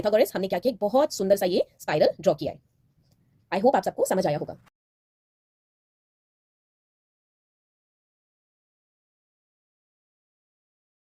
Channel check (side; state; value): both; identical; correlation 1.00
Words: हमने क्या किया, एक बहुत सुंदर सा ये स्पाइरल ड्रॉ किया है। आई होप आप सबको समझ आया होगा।